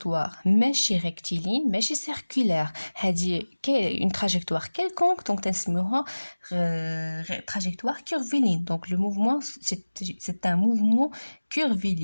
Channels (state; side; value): inverted; both; correlation -1.00